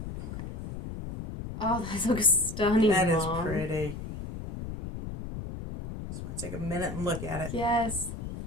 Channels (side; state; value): left; noise; rumble, 8 dB below the sound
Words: Okay. Oh, that looks stunning, That is Mom. pretty. Just want to take a minute and look at it. Yes.